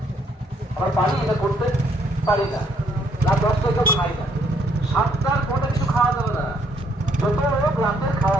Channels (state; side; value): normal; both; correlation 0.69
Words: আমার পারি এটা করতে পারি না, রাত 10টায় কেউ খাই না, 7টার পরে কিছু খাওয়া যাবে না। যত রোগ রাতের